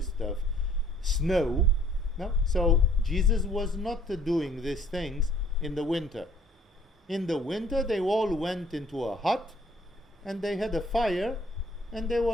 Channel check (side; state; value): both; normal; correlation 0.58